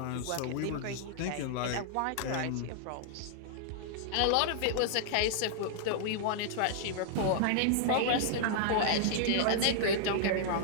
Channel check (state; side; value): different; both; correlation -0.01